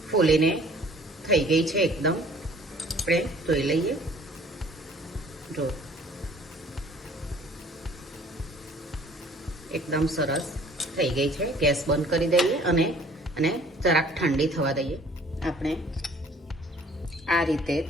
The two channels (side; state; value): both; normal; correlation 0.54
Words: ફૂલીને થઈ ગઈ છે એકદમ. આપણે જોઈ લઈએ. જો એકદમ સરસ થઈ ગઈ છે. ગેસ બંધ કરી દઈએ અને જરાક ઠંડી થવા દઈએ. આપણે આ રીતે